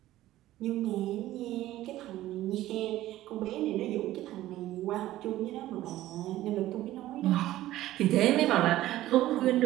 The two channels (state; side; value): quieter; left; 14.9 dB